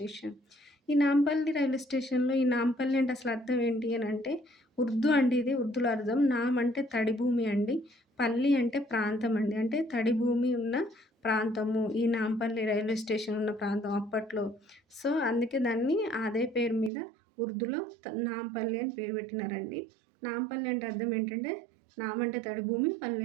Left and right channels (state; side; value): drops out; left; at 16.9 s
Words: ఈ నాంపల్లి రైల్వే స్టేషన్‌లో ఈ నాంపల్లి అంటే అసలు అర్థం ఏంటి అనంటే ఉర్దూ అండి ఇది. ఉర్దూలో అర్థం. నామ్ అంటే తడి భూమి అండి. పల్లి అంటే ప్రాంతం అండి. అంటే తడి భూమి ఉన్న ప్రాంతము. ఈ నాంపల్లి రైల్వే స్టేషన్ ఉన్న ప్రాంతం అప్పట్లో. సో, అందుకే దాన్ని అదే పేరు మీద ఉర్దూలో నాంపల్లి అని పేరు పెట్టినారండి. నాంపల్లి అంటే అర్థం ఏంటంటే నామ్ అంటే తడి భూమి, పల్లి